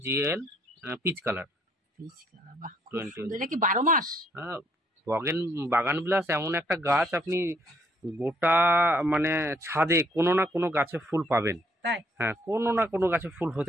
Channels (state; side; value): normal; both; correlation 0.67